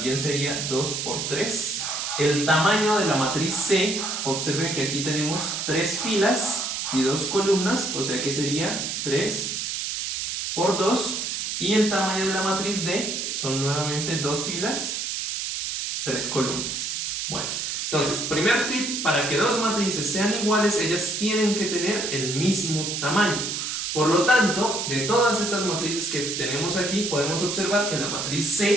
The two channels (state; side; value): noise; right; hiss, 3 dB below the sound